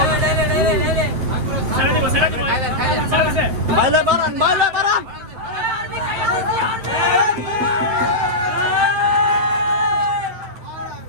বাইলে বাড়ান, বাইলে বাড়ান।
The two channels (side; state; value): left; late; 8.7 ms